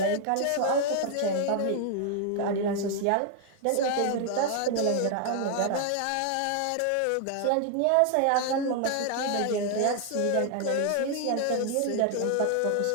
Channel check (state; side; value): different; both; correlation 0.00